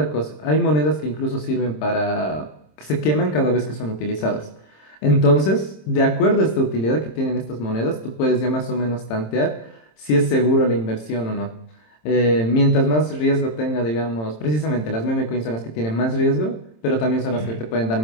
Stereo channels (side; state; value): right; late; 27 ms